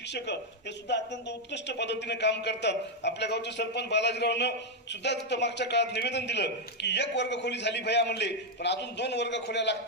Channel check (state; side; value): normal; both; correlation 0.01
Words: हे सुद्धा अत्यंत उत्कृष्ट पद्धतीने काम करतात। आपल्या गावचे सरपंच बालाजीरावनं सुद्धा तिथं मागच्या काळात निवेदन दिलं की 1 वर्गखोली झाली भैया म्हणले, पण अजून 2 वर्गखोल्या